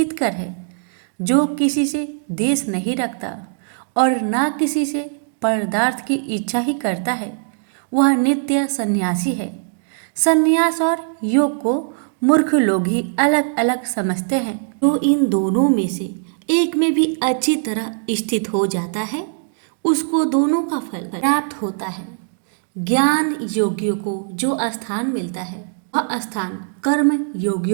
है। जो किसी से द्वेष नहीं रखता और ना किसी से पदार्थ की इच्छा ही करता है, वह नित्य सन्यासी है। सन्यास और योग को मूर्ख लोग ही अलग अलग समझते हैं। जो इन दोनों में से एक में भी अच्छी तरह स्थित हो जाता है, उसको दोनों का फल प्राप्त होता है। ज्ञान योगियों को जो स्थान मिलता है, वह स्थान कर्म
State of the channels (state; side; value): silent; left; digital silence